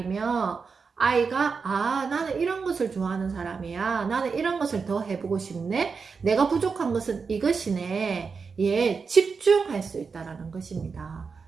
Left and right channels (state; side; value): quieter; left; 5.2 dB